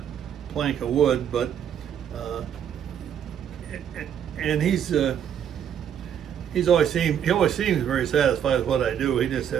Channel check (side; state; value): left; quieter; 9.1 dB